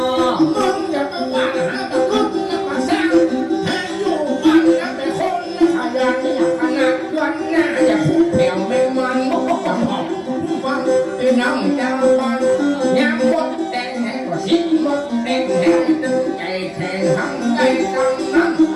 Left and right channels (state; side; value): identical; both; correlation 1.00